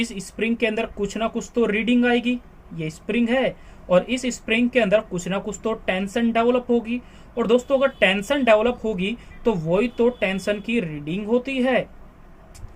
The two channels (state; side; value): identical; both; correlation 1.00